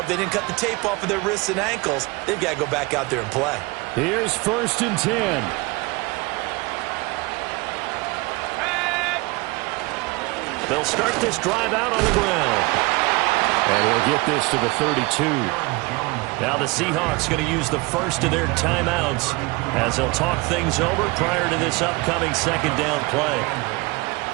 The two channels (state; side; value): quieter; left; 24.7 dB